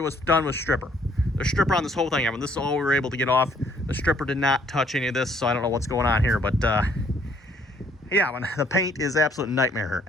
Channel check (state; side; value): normal; both; correlation 0.64